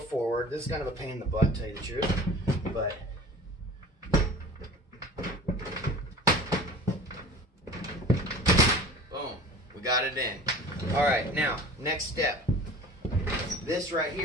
This is kind of a pain in the butt, to tell you the truth, but boom, we got it in. All right, now next step. This right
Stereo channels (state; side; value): normal; both; correlation 0.41